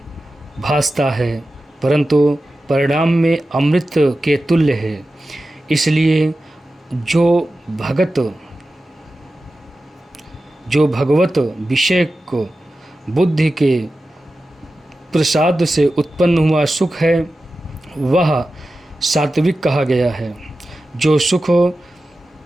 भासता है, परंतु परिणाम में अमृत के तुल्य है। इसलिए जो भगवत विषय को बुद्धि के प्रसाद से उत्पन्न हुआ सुख है, वह सात्विक कहा गया है। जो सुख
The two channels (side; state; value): both; normal; correlation 0.93